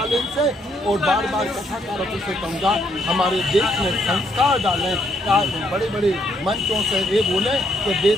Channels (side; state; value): both; normal; correlation 0.72